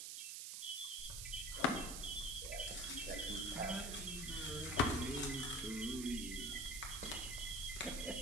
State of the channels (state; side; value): noise; right; hiss, 4 dB below the sound